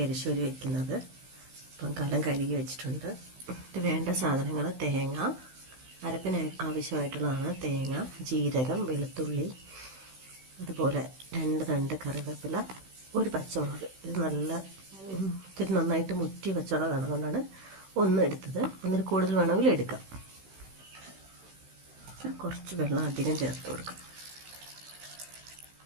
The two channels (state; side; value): late; left; 16 ms